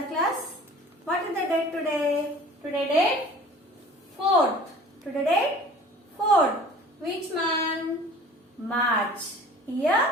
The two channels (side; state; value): both; normal; correlation 0.45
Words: class. What is the date today? Today date 4th. Which month? March.